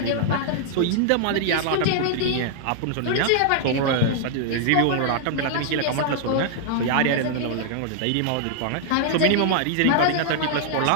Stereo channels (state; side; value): different; both; correlation 0.00